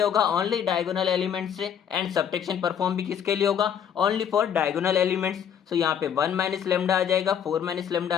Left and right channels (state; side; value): quieter; right; 8.5 dB